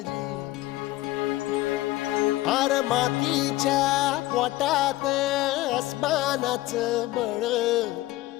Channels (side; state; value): right; quieter; 17.3 dB